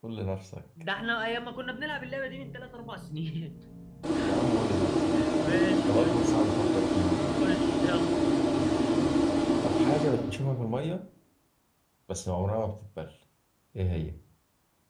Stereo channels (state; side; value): identical; both; correlation 1.00